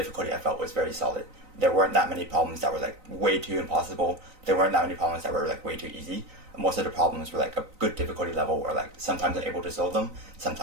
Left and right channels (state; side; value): late; left; 3.9 ms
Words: I felt was very solid. There weren't that many problems that were like way too impossible. There weren't that many problems that were like way too easy. Most of the problems were like a good difficulty level where like sometimes I'm able to solve them,